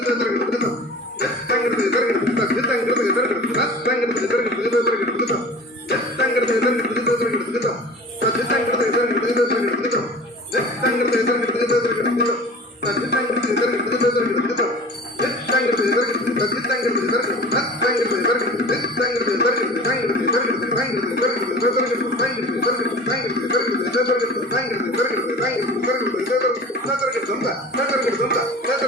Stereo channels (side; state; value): both; normal; correlation 0.39